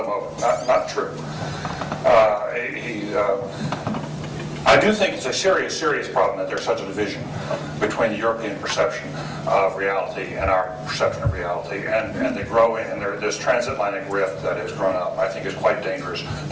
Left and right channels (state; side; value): identical; both; correlation 1.00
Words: him over. Not true. I do think it's a serious problem that there's such a division between the European perception of reality and our perception of reality, and the growing, and this transatlantic rift that has grown up, I think is quite dangerous,